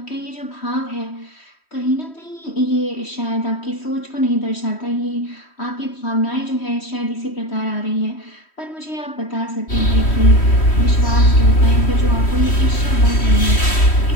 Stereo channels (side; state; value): right; late; 3.1 ms